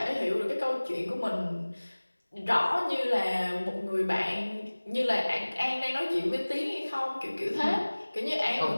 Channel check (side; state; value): both; inverted; correlation -1.00